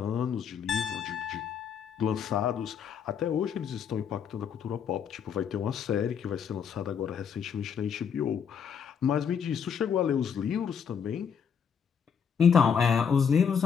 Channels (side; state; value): right; quieter; 7.2 dB